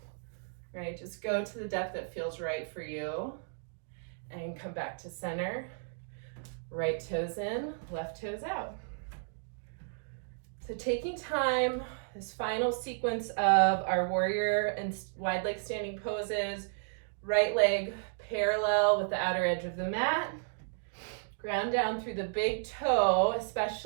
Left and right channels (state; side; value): silent; left; digital silence